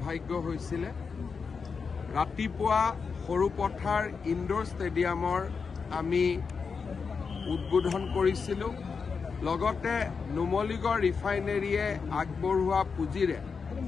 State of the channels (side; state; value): right; quieter; 5.4 dB